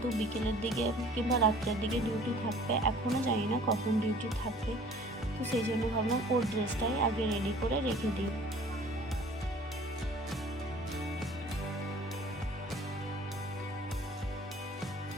বিকেলের দিকে কিংবা রাত্রের দিকে ডিউটি থাকবে, এখনও জানি না কখন ডিউটি থাকবে, তো সেই জন্য ভাবলাম ওর ড্রেসটাই আগে রেডি করে রেখে দিই।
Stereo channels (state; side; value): normal; both; correlation 0.50